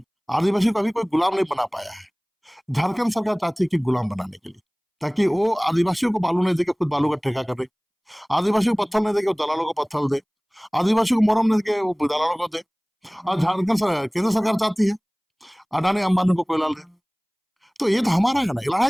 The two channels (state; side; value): identical; both; correlation 1.00